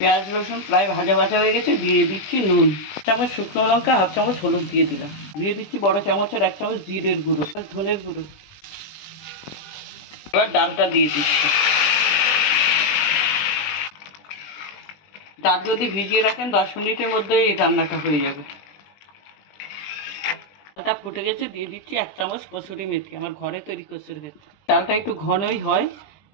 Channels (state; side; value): late; right; 20 ms